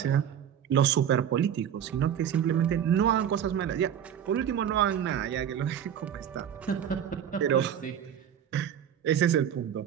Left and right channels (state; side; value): quieter; left; 9.2 dB